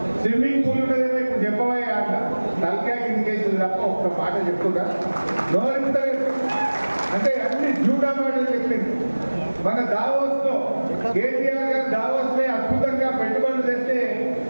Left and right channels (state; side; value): inverted; both; correlation -1.00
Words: స్విమ్మింగ్ పూల్ ఉన్నదేమో ఇప్పుడు చెప్పవా అంట. తలకాయ కిందికేసింది తప్ప ఒక్క మాట చెప్తుందా? నోరెత్తలేదు. అంటే అన్ని జూడా మాటలు చెప్పింది. మన దావోస్ లో కేటీఆర్ గారు దావోస్ లో అద్భుతంగా పెట్టుబడులు తెస్తే